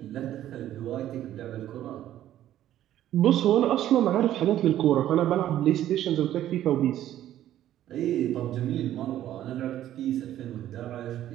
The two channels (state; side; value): quieter; left; 12.4 dB